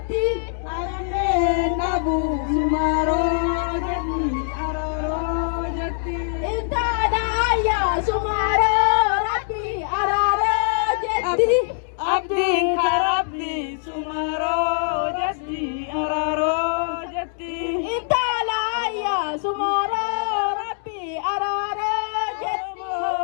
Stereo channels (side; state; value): right; silent; digital silence